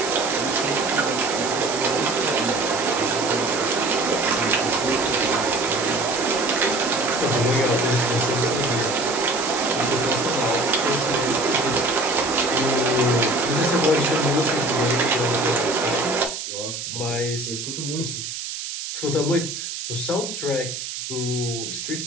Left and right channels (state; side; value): noise; right; hiss, 6 dB below the sound